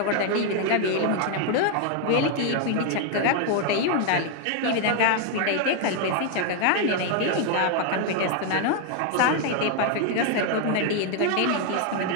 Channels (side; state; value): both; different; correlation 0.00